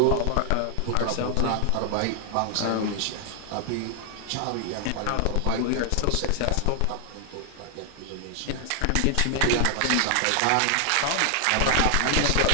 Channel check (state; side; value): different; both; correlation 0.00